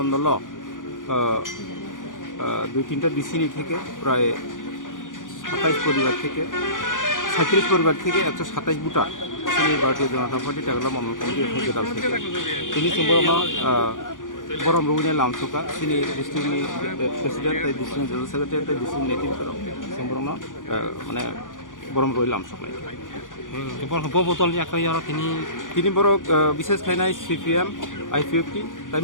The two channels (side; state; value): right; late; 0.88 ms